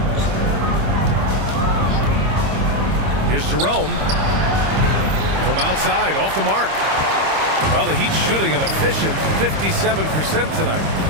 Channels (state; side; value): late; left; 26 ms